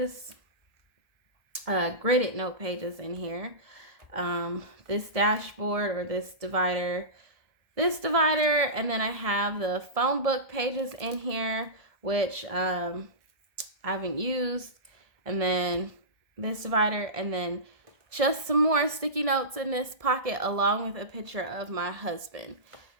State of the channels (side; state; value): left; late; 1.7 ms